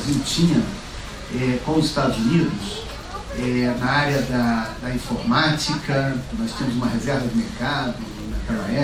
tinha com os Estados Unidos, na área da informática. Nós tínhamos uma reserva de mercado naquela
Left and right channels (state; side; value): identical; both; correlation 1.00